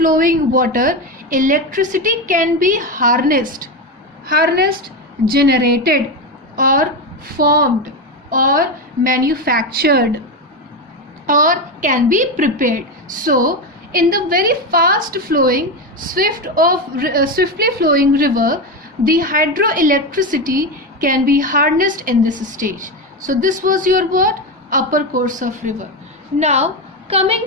water electricity can be harnessed, generated, or formed, or manufactured, or can be prepared. So in the very fast flowing, swiftly flowing river, the hydroelectricity can be harnessed in this stage. So this was your what? Upper course of river. Now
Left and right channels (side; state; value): both; normal; correlation 0.14